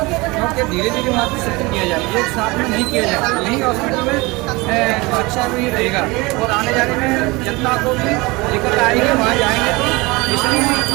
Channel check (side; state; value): left; quieter; 23.8 dB